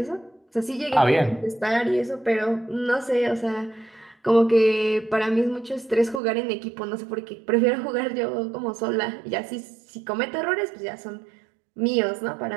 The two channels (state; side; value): drops out; left; at 6.2 s